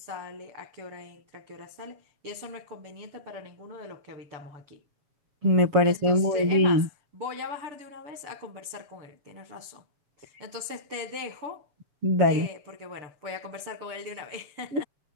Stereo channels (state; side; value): late; left; 6.8 ms